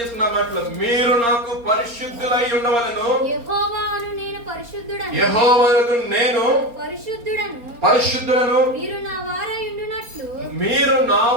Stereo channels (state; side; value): late; left; 4.3 ms